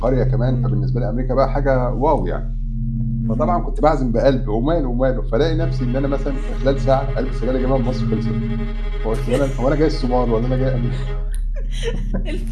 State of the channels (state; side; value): identical; both; correlation 1.00